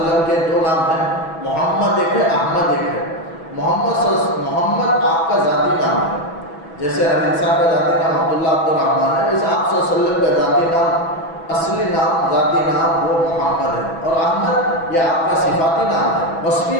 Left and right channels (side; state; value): right; late; 6.1 ms